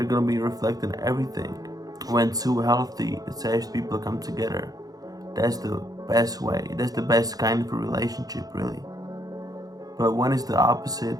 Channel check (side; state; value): left; late; 0.18 ms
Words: gonna be reflecting everything. When two healthy, attached people come together, that's the best way. That's the best kind of a relationship, really. But when it's the